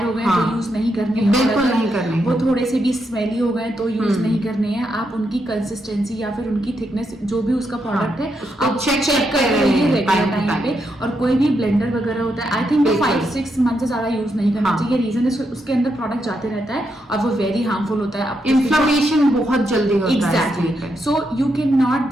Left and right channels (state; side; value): normal; both; correlation 0.81